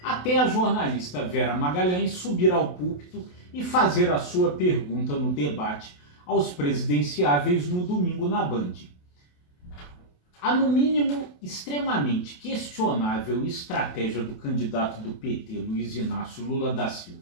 até a jornalista Vera Magalhães subir ao púlpito e fazer a sua pergunta no debate aos presidenciáveis no domingo na Band. A, no mínimo, extremamente questionável estratégia do candidato do PT, Luiz Inácio Lula da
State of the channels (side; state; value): right; late; 28 ms